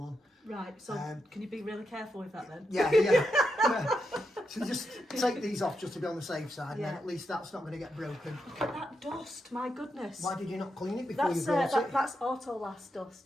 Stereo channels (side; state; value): both; normal; correlation 0.85